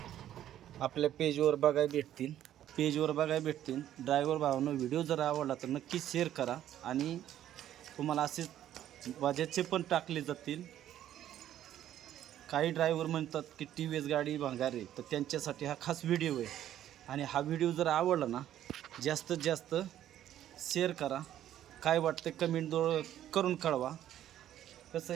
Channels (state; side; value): quieter; left; 11.7 dB